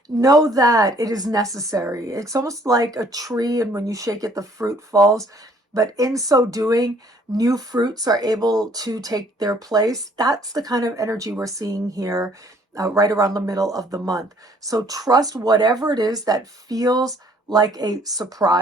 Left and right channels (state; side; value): normal; both; correlation 0.60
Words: know that it is necessary. It's almost like a tree, and when you shake it, the fruit falls. But in so doing, new fruits are able to take their place. That's the kind of energy we're seeing here right around the middle of the month. So trust whatever it is that feels like a